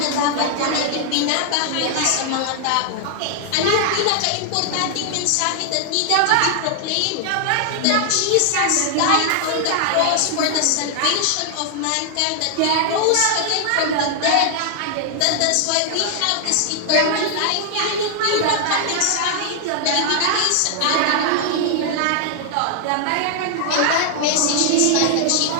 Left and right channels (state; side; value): different; both; correlation 0.00